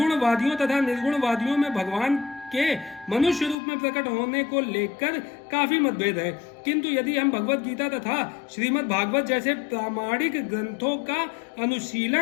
तथा निर्गुणवादियों में भगवान के मनुष्य रूप में प्रकट होने को लेकर काफी मतभेद है, किंतु यदि हम भगवत गीता तथा श्रीमद् भागवत जैसे प्रामाणिक ग्रंथों का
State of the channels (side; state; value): right; drops out; at 3.6 s